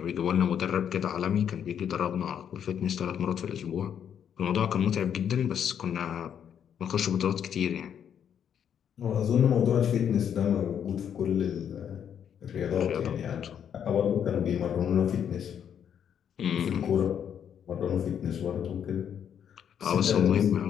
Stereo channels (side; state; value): right; quieter; 8.7 dB